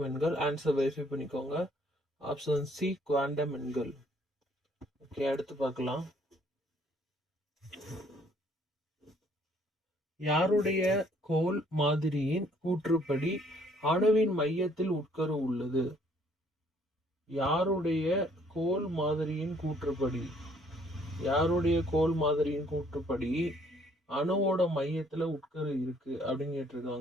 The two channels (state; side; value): normal; both; correlation 0.63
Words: எண்கள். ஆன்சர் வெரிஃபை பண்ணிக்கோங்க. ஆப்ஷன் சி குவாண்டம் எண்கள். ஓகே, அடுத்து பார்க்கலாம். யாருடைய கோல் மாதிரியின் கூற்றுப்படி அணுவின் மையத்தில் உட்கரு உள்ளது? யாருடைய கோல் மாதிரியின் கூற்றுப்படி அணுவோட மையத்துல உட்கரு இருக்கு அப்படின்னு